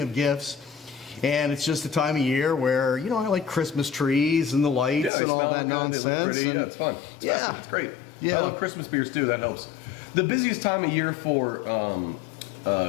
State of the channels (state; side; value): drops out; right; at 5.1 s